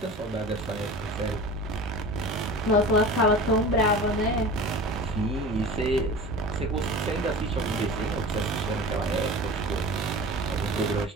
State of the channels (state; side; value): normal; both; correlation 0.35